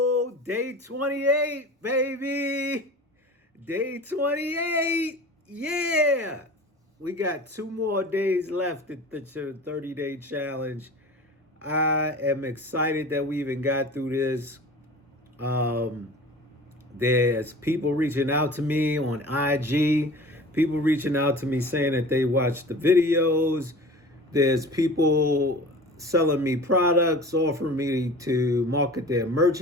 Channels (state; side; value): normal; both; correlation 0.39